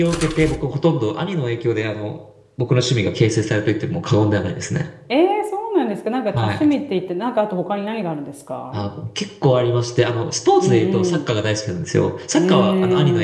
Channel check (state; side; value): identical; both; correlation 1.00